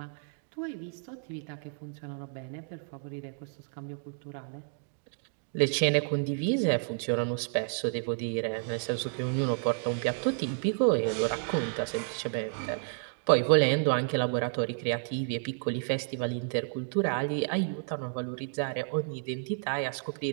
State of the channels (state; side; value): silent; left; 57 dB below the other